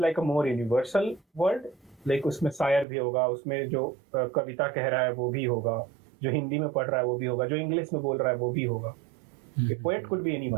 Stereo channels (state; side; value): drops out; left; at 2.9 s